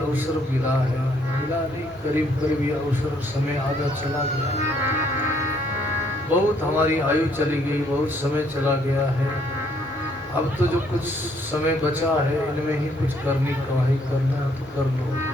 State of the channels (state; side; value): normal; both; correlation 0.67